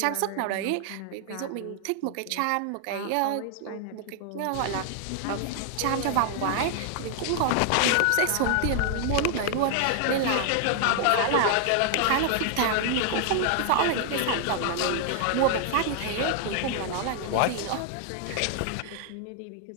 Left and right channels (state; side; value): different; both; correlation 0.00